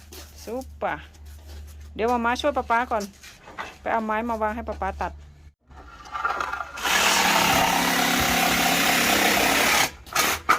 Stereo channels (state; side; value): identical; both; correlation 1.00